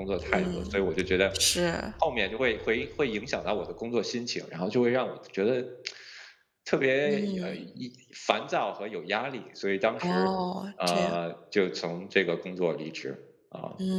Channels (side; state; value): both; identical; correlation 1.00